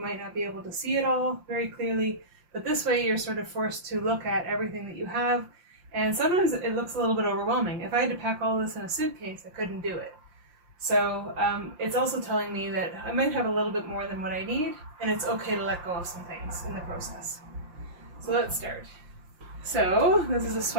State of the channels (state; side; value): late; left; 5.7 ms